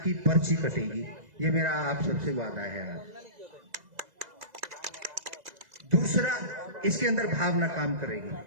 की पर्ची कटेगी। ये मेरा आप सबसे वादा है। दूसरा, इसके अंदर भावना काम करेगी।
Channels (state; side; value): late; left; 2.0 ms